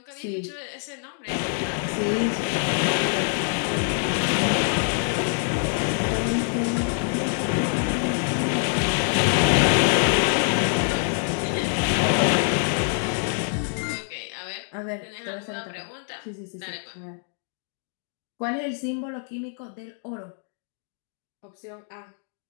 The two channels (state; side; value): silent; right; 61 dB below the other